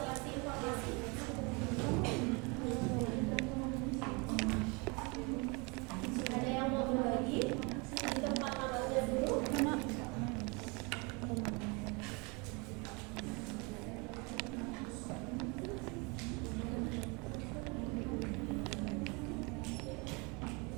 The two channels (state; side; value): quieter; left; 29.7 dB